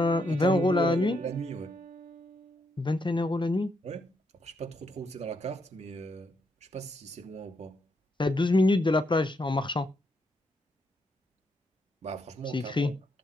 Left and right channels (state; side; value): normal; both; correlation 0.78